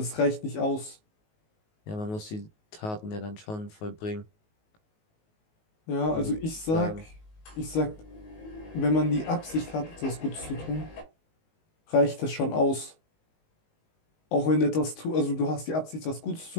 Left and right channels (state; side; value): late; right; 19 ms